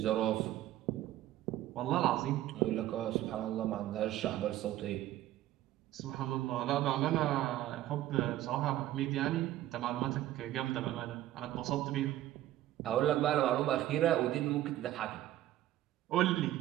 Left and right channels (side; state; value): left; quieter; 13.9 dB